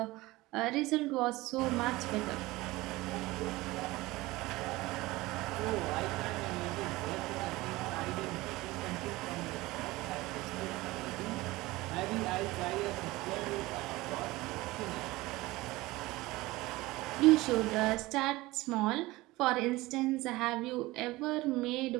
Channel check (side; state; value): left; quieter; 19.9 dB